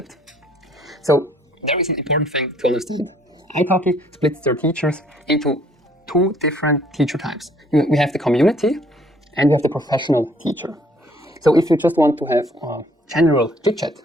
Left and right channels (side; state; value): both; normal; correlation 0.61